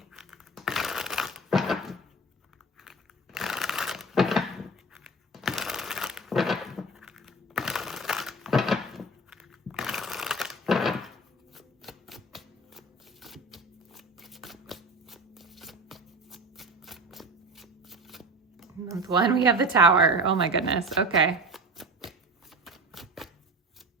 Month 1, we have the Tower. Oh my goodness. Okay.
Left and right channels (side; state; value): both; normal; correlation 0.33